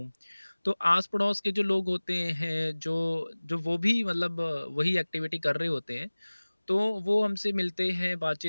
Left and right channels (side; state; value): both; inverted; correlation -1.00